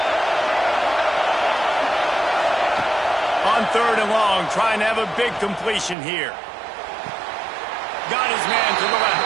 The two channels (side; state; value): left; drops out; at 6.0 s